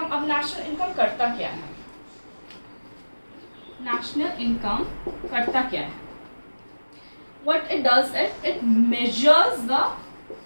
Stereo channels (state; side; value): inverted; both; correlation -1.00